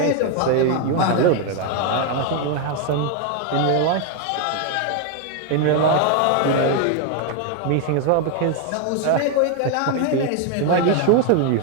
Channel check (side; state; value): both; different; correlation 0.01